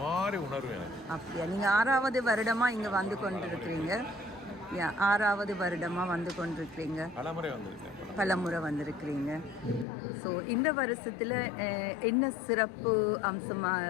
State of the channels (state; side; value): drops out; right; at 9.9 s